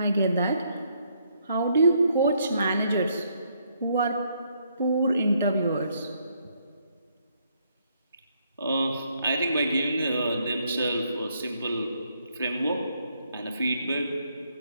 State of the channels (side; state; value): both; inverted; correlation -0.72